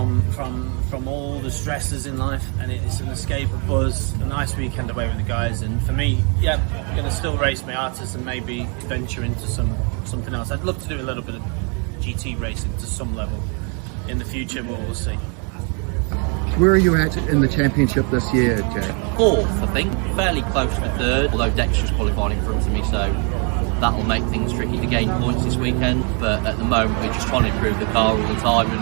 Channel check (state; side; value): quieter; left; 36.9 dB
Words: all the stresses in life, and it's an escape, a buzz, a nice weekend away with the guys. And for me, yeah, I'm going to still race Miatas and maybe venture into something else. I'd love to do a little bit of GT racing to some level in the future, but we'll see. Where are you at in the championship this year, Jack? Fourth, I think, fairly close to third, although Dexter's qualified in front of me, so that'll make things tricky to gain points this weekend. But at the moment, we're just trying to improve the car all the time